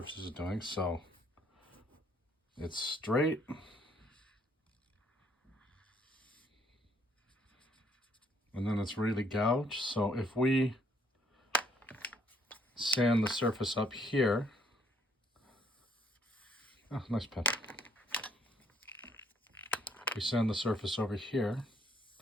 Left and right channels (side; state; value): both; normal; correlation 0.66